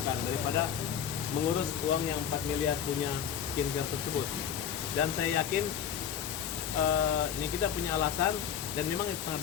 daripada mengurus uang yang 4 miliar punya skincare tersebut. Dan saya yakin ini kita punya alasan dan memang itu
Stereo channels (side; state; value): right; quieter; 8.4 dB